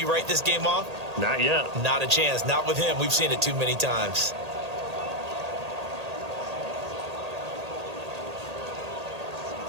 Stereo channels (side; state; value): left; late; 1.8 ms